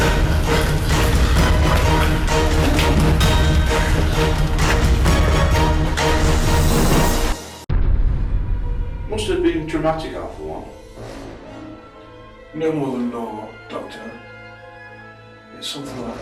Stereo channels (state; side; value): identical; both; correlation 1.00